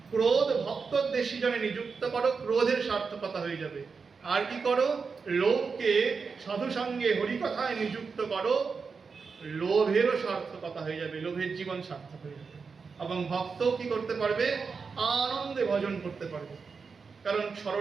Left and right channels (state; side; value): quieter; left; 5.1 dB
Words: ক্রোধ ভক্ত দেশী জনে নিযুক্ত করো, ক্রোধের সার্থকতা হয়ে যাবে। আর কি করো? লোভকে সাধু সঙ্গে হরিকথায় নিযুক্ত করো, লোভেরও সার্থকতা হয়ে যাবে, লোভের জীবন সার্থক হয়ে যাবে। এবং ভক্ত কি করতে পারবে? আনন্দে ভজন করতে পারবে। কারণ